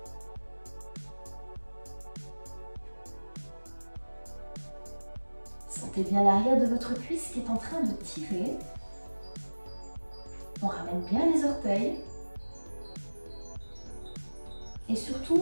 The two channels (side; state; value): both; inverted; correlation -1.00